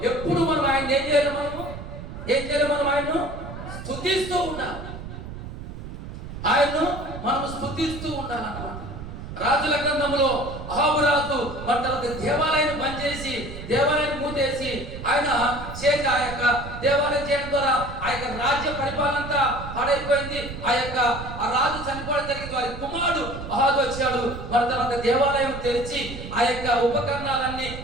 ఎప్పుడు మనం ఆయన ఏం చేయాలి? మనం ఆయన్ను స్తుతిస్తూ ఉండాలి. ఆయన్ను మనం స్తుతిస్తూ ఉండాలన్నమాట. రాజుల గ్రంథంలో అహాబు రాజు తర్వాత దేవాలయాన్ని బంద్ చేసి, దేవాలయాన్ని మూతేసి ఆయన చేసి ఆ యొక్క దేవాలయం చేయడం ద్వారా ఆ యొక్క రాజ్య పరిపాలన అంతా పాడైపోయింది. ఆ రాజు చనిపోవడం జరిగింది. వారి కుమారుడు అహాబు వచ్చాడు. మరి తర్వాత దేవాలయం తెరిచి ఆ యొక్క ఉపకరణాలన్నీ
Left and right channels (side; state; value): right; noise; rumble, 10 dB below the sound